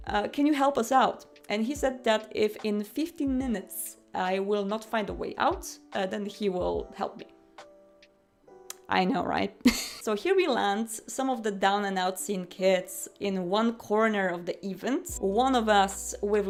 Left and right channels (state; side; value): identical; both; correlation 1.00